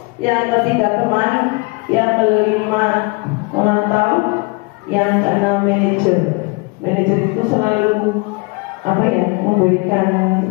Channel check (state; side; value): quieter; right; 28.1 dB